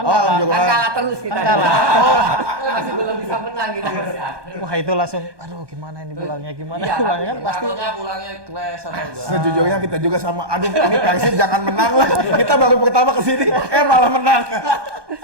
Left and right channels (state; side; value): late; left; 1.2 ms